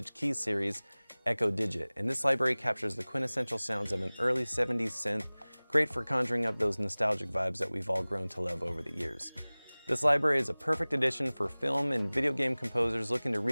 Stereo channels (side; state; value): both; inverted; correlation -1.00